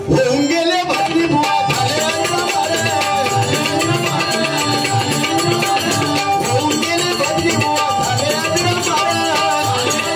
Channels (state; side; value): identical; both; correlation 1.00